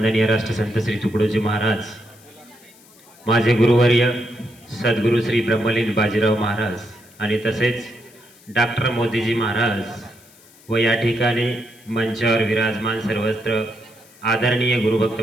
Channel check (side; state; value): left; noise; hiss, 26 dB below the sound